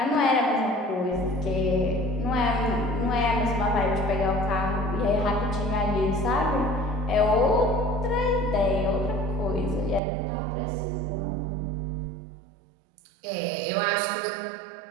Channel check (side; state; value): left; drops out; at 10.0 s